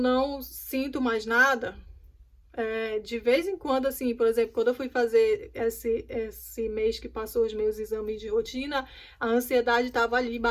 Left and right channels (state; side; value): identical; both; correlation 1.00